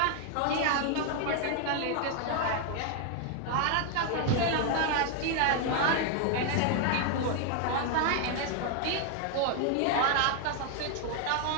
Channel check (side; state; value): both; different; correlation 0.00